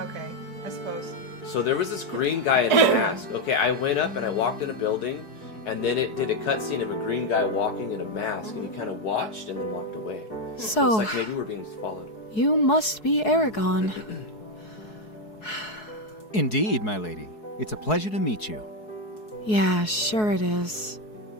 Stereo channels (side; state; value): right; late; 4.7 ms